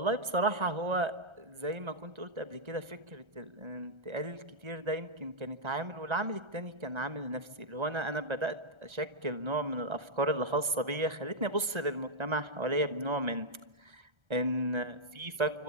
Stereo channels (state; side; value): late; left; 1.3 ms